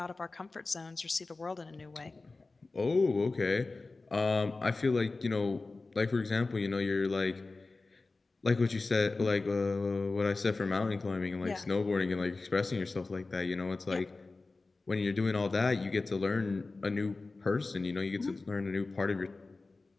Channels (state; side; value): quieter; right; 3.6 dB